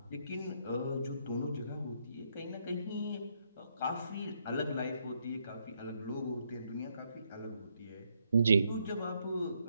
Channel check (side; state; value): both; inverted; correlation -0.75